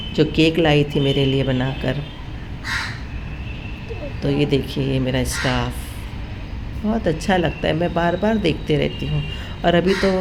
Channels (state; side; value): identical; both; correlation 1.00